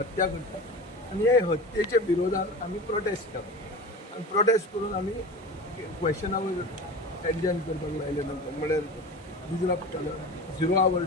करता आनी हे हत्येच्या विरोधात आमी प्रोटेस्ट केलो आनी प्रोटेस्ट करून आमी क्वेश्चनावर एडजर्न करपाक लायले. नंतर म्हळ्यार डिजरप्ट केलो 0 आवर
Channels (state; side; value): normal; both; correlation 0.33